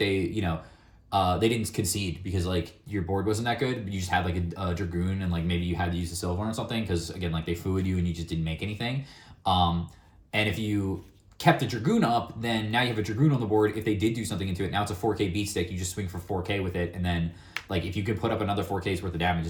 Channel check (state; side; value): identical; both; correlation 1.00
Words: didn't concede because like your board wasn't that good. You just had like a Dragoon and like maybe you had to use a Silver or something because again like they fooed you and you just didn't make anything. And if you kept the Dragoon up, then now you have a Dragoon on the board. If they did do something into it, now it's a 4K beat stick. You just swing for 4K with it and then like if you could put up another 4K's worth of damage,